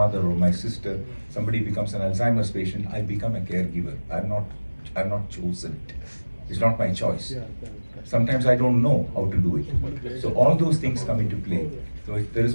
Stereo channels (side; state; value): both; inverted; correlation -1.00